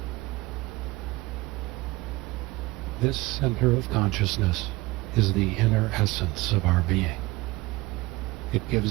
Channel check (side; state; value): left; quieter; 21.0 dB